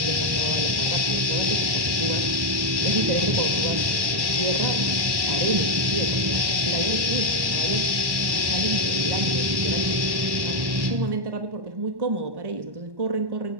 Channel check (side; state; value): left; late; 1.1 ms